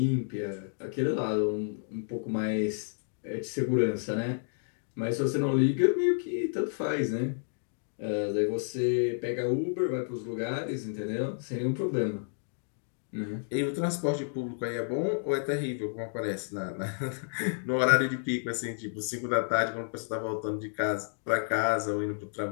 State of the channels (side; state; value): right; silent; digital silence